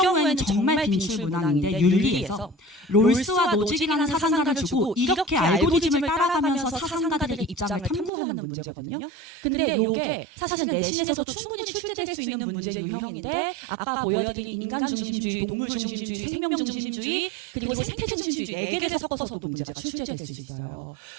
정말 빈출 문항인데 윤리에서 롤스와 노직이라는 사상가를 주고 이렇게 알고리즘을 따라가면서 사상가들의 입장을 탐구하는 문제거든요. 근데 요게 사실은 내신에서도 충분히 출제될 수 있는 문제 유형인데 아까 보여드린 인간 중심주의, 동물 중심주의, 생명 중심주의 그리고 생태 중심주의 4개를 섞어서도 문제가 출제될 수 있어요.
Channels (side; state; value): left; drops out; at 8.1 s